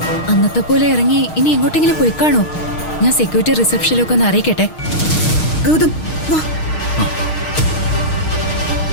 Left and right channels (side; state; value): right; late; 6.4 ms